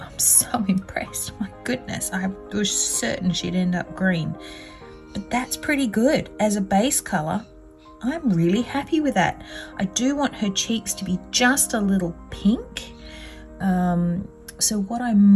so impressed. My goodness, I was certain she'd end up green, but that's pretty good as a base color. I'm really happy with that. I do want her cheeks to be just a little pink. So what I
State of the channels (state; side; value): identical; both; correlation 1.00